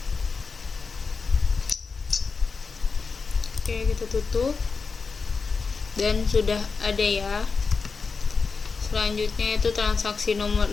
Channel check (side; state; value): right; quieter; 4.8 dB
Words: Oke, kita tutup dan sudah ada ya. Selanjutnya itu transaksi nomor